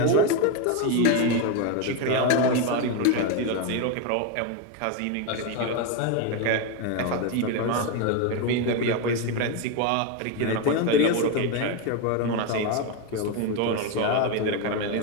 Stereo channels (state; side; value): different; both; correlation 0.02